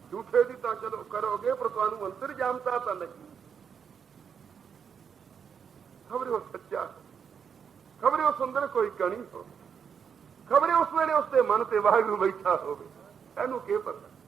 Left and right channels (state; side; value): quieter; left; 7.1 dB